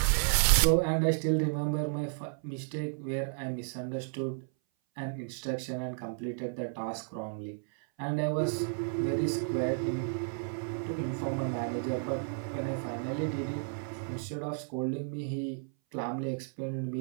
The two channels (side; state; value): left; silent; 56 dB below the other